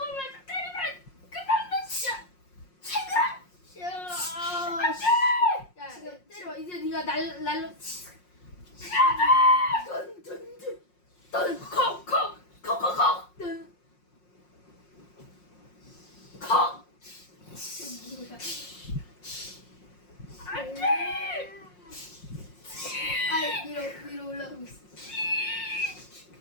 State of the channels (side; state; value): right; late; 5.6 ms